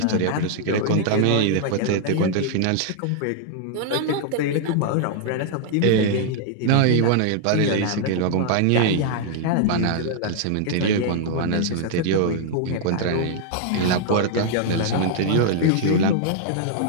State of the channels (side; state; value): both; different; correlation 0.00